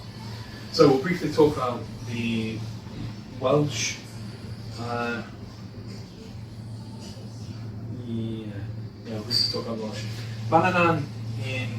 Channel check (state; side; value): identical; both; correlation 1.00